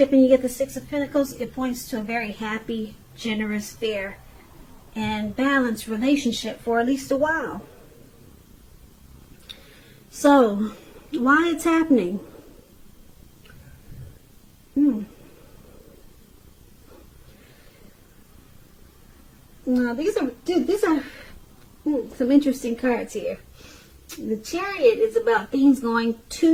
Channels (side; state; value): both; identical; correlation 1.00